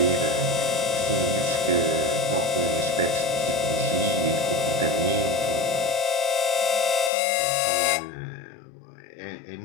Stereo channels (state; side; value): drops out; right; at 7.1 s